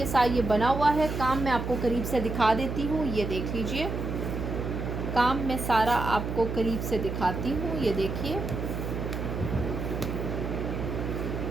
साथ ये बना हुआ है। काम मैं आपको करीब से दिखा देती हूँ। ये देख लीजिए, काम मैं सारा आपको करीब से दिखाती हूँ। ये देखिए,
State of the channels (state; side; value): noise; right; hum, 4 dB below the sound